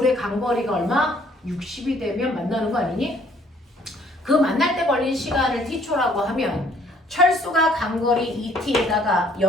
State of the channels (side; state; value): both; normal; correlation 0.62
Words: 간거리가 얼마? 60이 되면 만나는 거 아니니? 그 만날 때 걸린 시간을 t초라고 하면 철수가 간거리 2t에다가